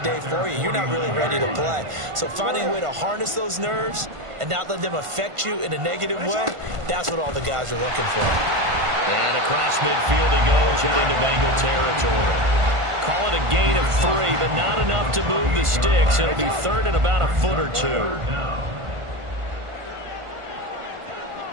day for you. You're not really ready to play. So finding a way to harness those nerves and not let them affect you in a negative way, that's what all the guys are looking for. And across midfield he goes and into Bengal territory. Call it a gain of 3, but not enough to move the sticks. It'll be third and about a foot or two.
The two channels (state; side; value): late; left; 1.5 ms